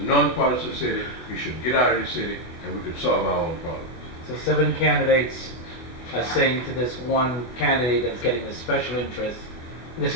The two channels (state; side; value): late; right; 24 ms